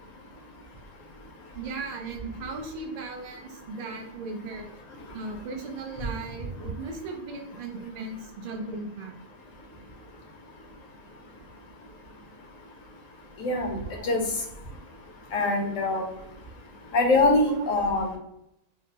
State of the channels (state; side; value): late; left; 1.9 ms